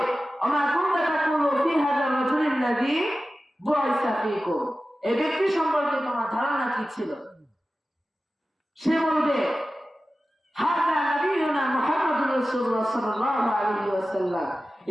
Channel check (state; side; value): normal; both; correlation 0.95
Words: আমা কুনতা তাকুলু ফি হাযা রাজুলিল্লাযী বুইসা ফীকুম, এই ব্যক্তি সম্পর্কে তোমার ধারণা কি ছিল? সে বলবে হাযা নবিয়ুনা মুহাম্মাদুর রাসূলুল্লাহ সাল্লাল্লাহু আলাইহি ওয়াসাল্লাম,